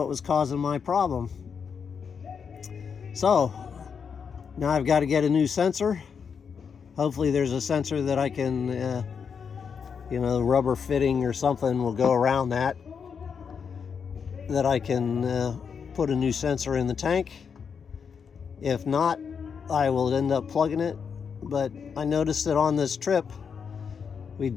was causing my problem. So now I've got to get a new sensor. Hopefully there's a sensor that I can you know, rubber fitting or something will go around that I can put a new sensor in the tank. If not, I will end up plugging it. But I noticed that on this trip we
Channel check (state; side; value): quieter; right; 6.5 dB